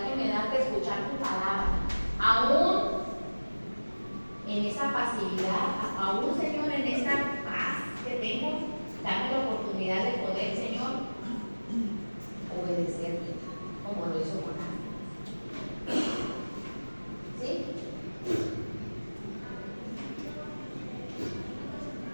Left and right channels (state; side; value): inverted; both; correlation -1.00